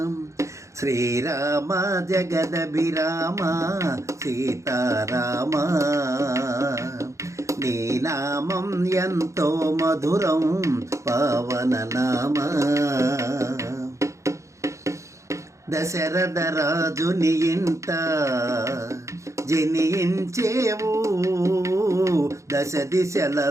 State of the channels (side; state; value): left; late; 0.15 ms